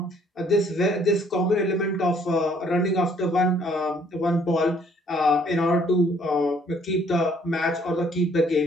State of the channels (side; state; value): both; normal; correlation 0.62